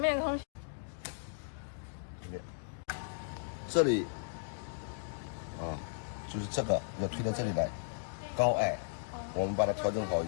空气。这里，就是这个要推到这里来，高矮，我们把它调整好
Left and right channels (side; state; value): right; silent; digital silence